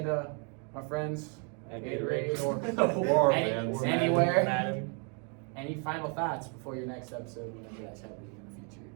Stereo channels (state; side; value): quieter; left; 38.3 dB